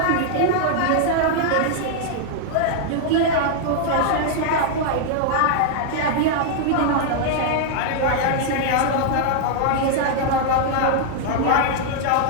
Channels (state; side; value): different; both; correlation 0.00